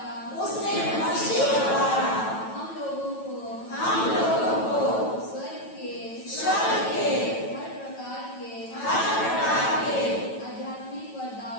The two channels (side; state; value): right; late; 9.1 ms